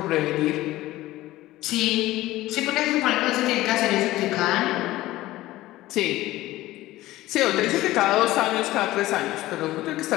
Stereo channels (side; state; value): right; quieter; 16.7 dB